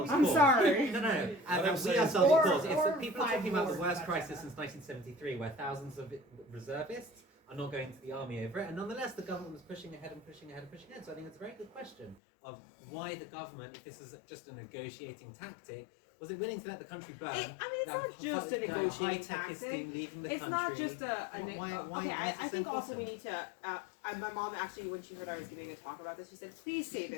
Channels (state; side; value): drops out; right; at 12.2 s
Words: I'm cause. sorry. No. I'm We saying- ourselves Or- cause. It's or that people are 5 talking about the wars, worst that's crisis bad. since 1973, where thousands of reservists are not going to the army over it, and nonetheless the government was pushing ahead and pushing ahead and pushing ahead. So I think it's a very good question of why the government, if this is just a negotiating tactic, was it willing to let the country burn? It's not just a negotiating high-tech tactic. leaving the It's country. not just Why okay, is I this think so also we important? need to. My mom actually, when she heard I was giving a talk about this, she said, "Please say